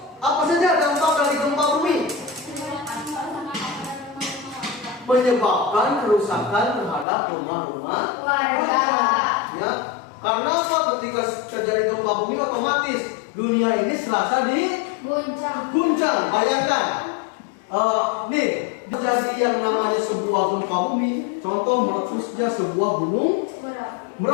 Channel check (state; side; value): drops out; right; at 7.1 s